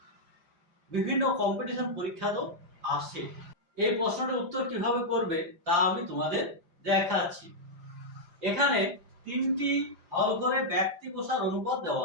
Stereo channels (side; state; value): left; late; 5.0 ms